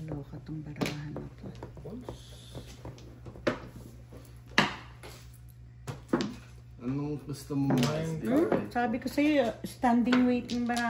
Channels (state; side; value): identical; both; correlation 1.00